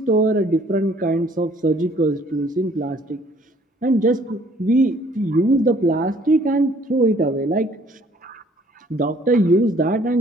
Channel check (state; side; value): normal; both; correlation 0.59